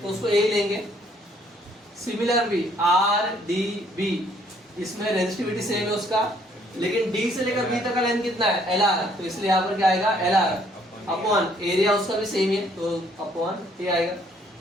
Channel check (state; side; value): normal; both; correlation 0.64